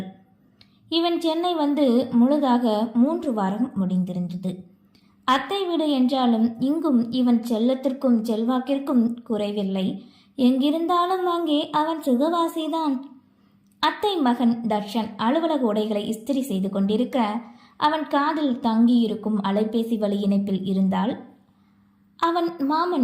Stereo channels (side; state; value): both; identical; correlation 1.00